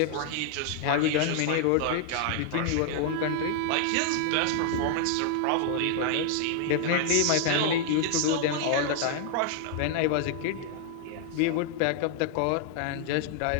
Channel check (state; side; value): different; both; correlation 0.00